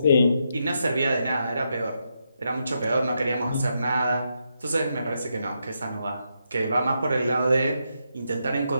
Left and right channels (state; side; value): inverted; both; correlation -0.82